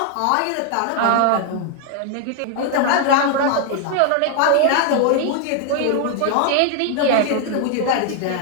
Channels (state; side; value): different; both; correlation 0.00